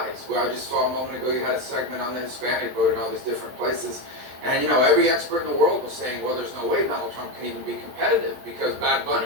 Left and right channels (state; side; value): late; left; 22 ms